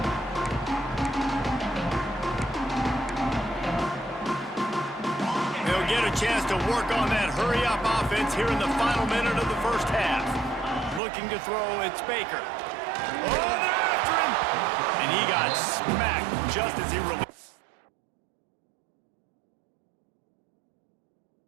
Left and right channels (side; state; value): left; drops out; at 11.0 s